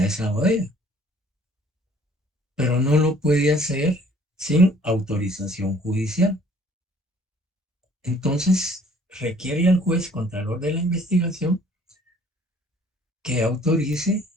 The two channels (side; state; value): both; normal; correlation 0.56